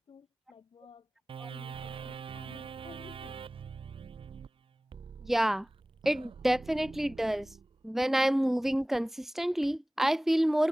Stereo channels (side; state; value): both; normal; correlation 0.98